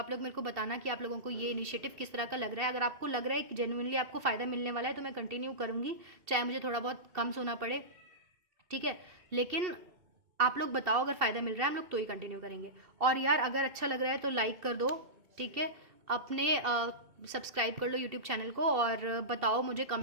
लोग मेरे को बताना कि आप लोगों को ये इनिशिएटिव किस तरह का लग रहा है। अगर आपको लग रहा है कि जेन्युइनली आपको फ़ायदा मिलने वाला है तो मैं कंटिन्यू करूँगी, चाहे मुझे थोड़ा बहुत कम सोना पड़े। ठीक है, लेकिन आप लोग बताओ अगर फ़ायदा मिल रहा है हम लोग तो ही कंटिन्यू करेंगे। और यार अगर अच्छा लग रहा है तो लाइक कर दो। ठीक है, अपने सब्सक्राइब कर लो यूट्यूब चैनल को और बताओ मुझे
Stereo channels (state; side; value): late; left; 2.7 ms